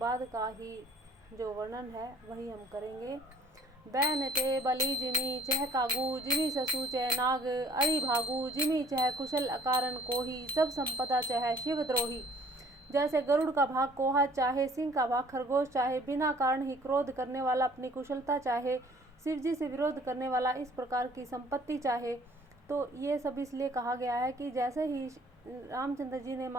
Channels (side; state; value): both; normal; correlation 0.56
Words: का ही जो वर्णन है वही हम करेंगे। बैन ते बलि जिमी चह कागू जिमी ससु चह नाग अरि भागू जिमी चह कुशल अकारण कोही सब संपदा चह शिव द्रोही। जैसे गरुड़ का भाग कोहा चाहे, सिंह का भाग खरगोश चाहे, बिना कारण ही क्रोध करने वाला अपनी कुशलता चाहे, शिव जी से विरोध करने वाला इस प्रकार की संपत्ति चाहे। तो ये सब इसलिए कहा गया है कि जैसे ही रामचंद्र जी ने